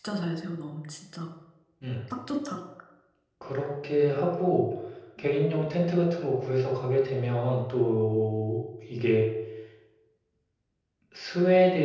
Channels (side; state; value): both; identical; correlation 1.00